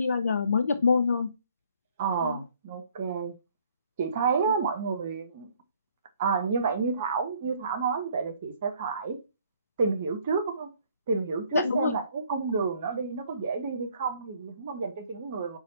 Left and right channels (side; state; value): both; inverted; correlation -0.61